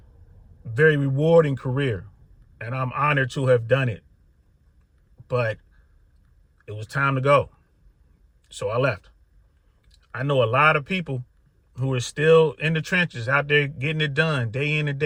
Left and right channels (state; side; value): identical; both; correlation 1.00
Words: very rewarding career. And I'm honored to have done it. But it was time to go. So I left. I know a lot of people who are still in the trenches out there getting it done day in and